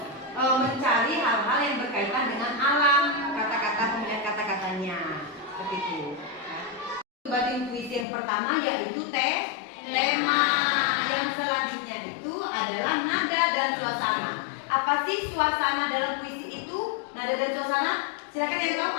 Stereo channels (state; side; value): drops out; right; at 8.1 s